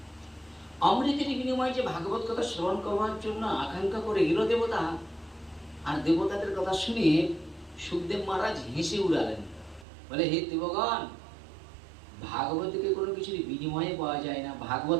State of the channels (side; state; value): left; drops out; at 9.9 s